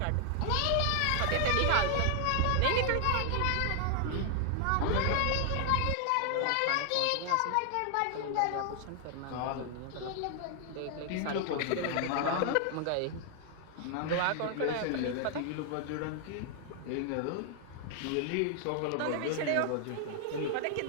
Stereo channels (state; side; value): different; both; correlation 0.00